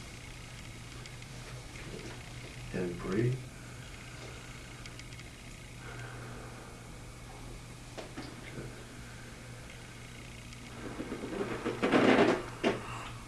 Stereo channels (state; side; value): identical; both; correlation 1.00